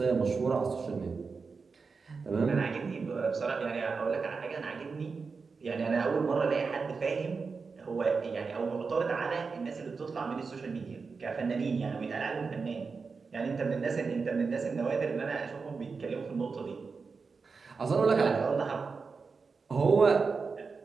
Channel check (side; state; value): left; quieter; 4.8 dB